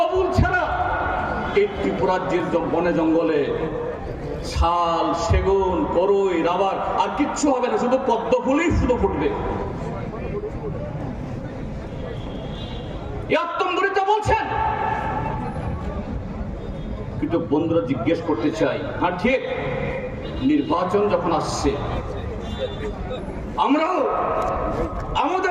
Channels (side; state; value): both; identical; correlation 1.00